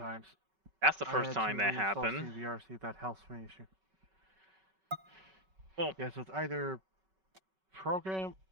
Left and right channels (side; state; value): left; late; 5.3 ms